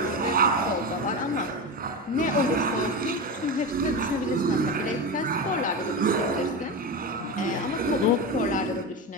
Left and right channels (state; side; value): normal; both; correlation 0.20